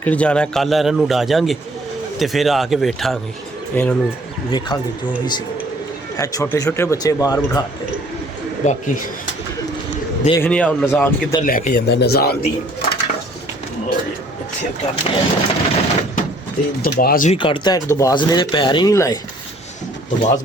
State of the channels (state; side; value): normal; both; correlation 0.58